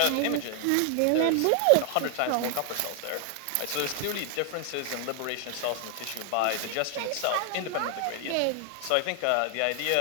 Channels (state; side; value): different; both; correlation 0.00